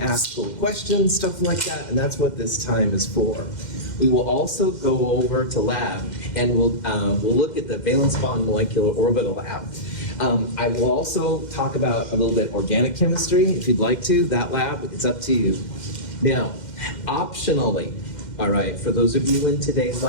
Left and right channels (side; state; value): right; late; 2.1 ms